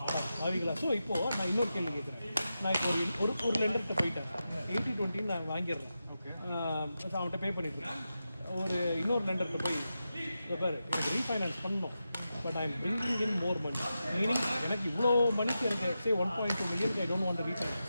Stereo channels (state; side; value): inverted; both; correlation -0.90